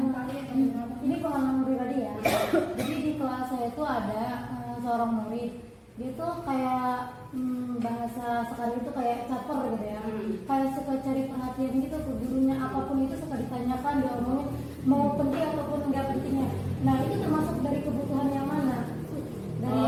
Ini pengalaman pribadi ya. Jadi di kelas saya itu ada seorang murid. Dia tuh kayak bahasa sekarang itu kayak caper gitu ya. Kayak suka cari perhatian gitu ke gurunya, apapun itu suka ditanyakan, diomongin, mau penting ataupun enggak pentingnya. Nah itu termasuk dari kebutuhan yang mana? Dari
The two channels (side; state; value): both; identical; correlation 1.00